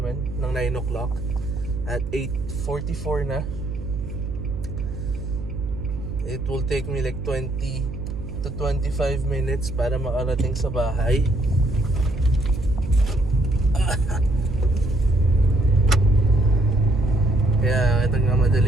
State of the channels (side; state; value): right; noise; hum, 8 dB below the sound